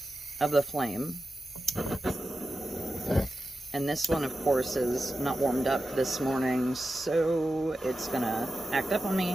of the flame. And this one, of course, is not warmed up this morning, so it's gonna act up on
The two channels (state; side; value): normal; both; correlation 0.92